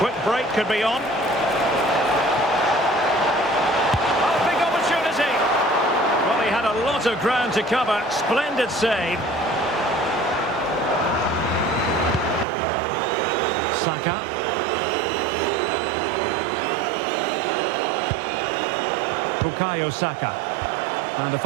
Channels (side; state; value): left; drops out; at 12.5 s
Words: break could be on. Oh, big opportunity. Well, he had a lot of ground to cover. Splendid save. Saka. Bukayo Saka. And a